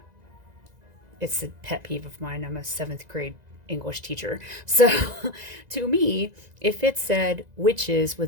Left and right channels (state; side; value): late; left; 2.0 ms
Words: It's a pet peeve of mine. I'm a 7th grade English teacher. So to me, if it said witches